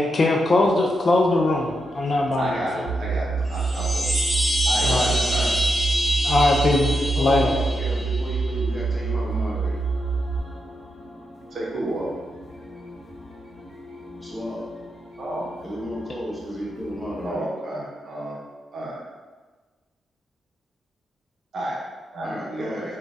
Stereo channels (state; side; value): normal; both; correlation 0.84